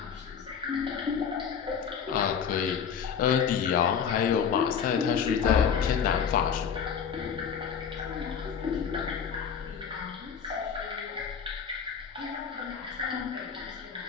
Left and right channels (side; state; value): right; quieter; 7.2 dB